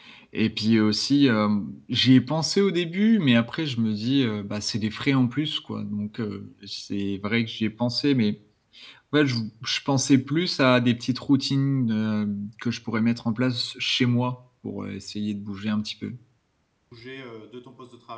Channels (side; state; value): both; identical; correlation 1.00